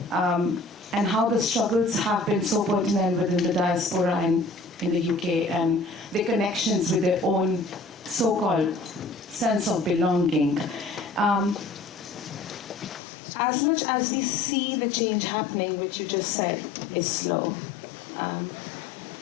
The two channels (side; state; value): right; drops out; at 13.0 s